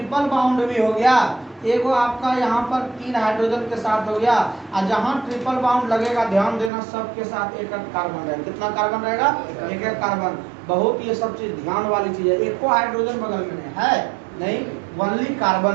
बाउंड भी हो गया। एक आपका यहाँ पर 3 हाइड्रोजन के साथ हो गया, और जहाँ ट्रिपल बाउंड लगेगा ध्यान देना सबके साथ एक कार्बन रहेगा। कितना कार्बन रहेगा, एक कार्बन। बहुत ये सब चीज ध्यान वाली चीज है। एक को हाइड्रोजन बगल में है नहीं, ओनली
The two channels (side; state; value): left; drops out; at 6.7 s